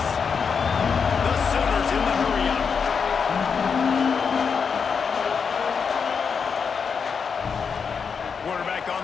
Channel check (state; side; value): quieter; right; 6.0 dB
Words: The Sooners in the hurry-up. Quarterback